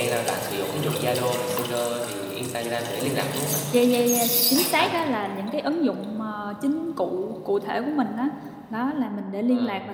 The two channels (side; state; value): both; identical; correlation 1.00